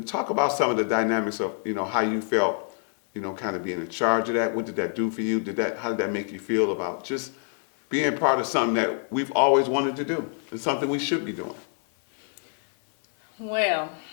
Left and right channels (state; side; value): silent; right; 55 dB below the other